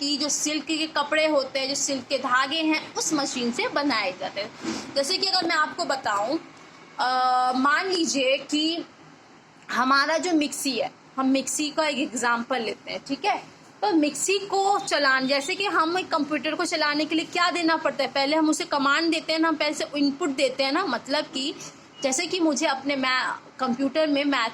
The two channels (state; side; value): identical; both; correlation 1.00